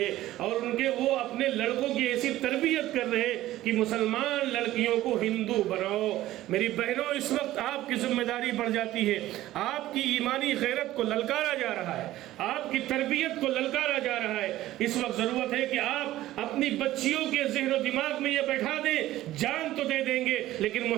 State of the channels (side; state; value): left; quieter; 15.2 dB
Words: ہے، اور وہ اپنے لڑکوں کی ایسی تربیت کر رہے ہیں کہ مسلمان لڑکیوں کو ہندو بناؤ۔ میری بہنوں، اس وقت آپ کی ذمہ داری بڑھ جاتی ہے، آپ کی ایمانی غیرت کو للکارا جا رہا ہے، آپ کی تربیت کو للکارا جا رہا ہے۔ اس وقت ضرورت ہے کہ آپ اپنی بچیوں کے ذہن و دماغ میں یہ بیٹھا دیں، جان تو دے دیں گے لیکن